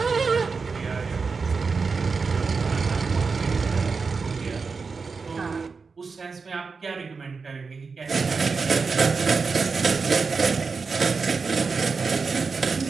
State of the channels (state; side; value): quieter; left; 4.8 dB